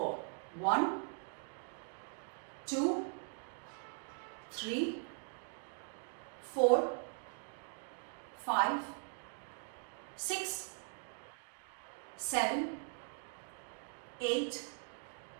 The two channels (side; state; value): left; silent; 51 dB below the other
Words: 1, 2, 3, 4, 5, 6, 7, 8,